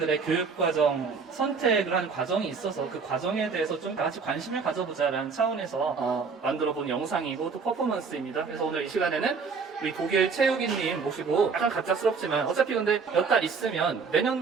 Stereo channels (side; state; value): left; quieter; 5.2 dB